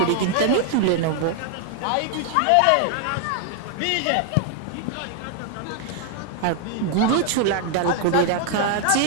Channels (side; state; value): both; different; correlation 0.00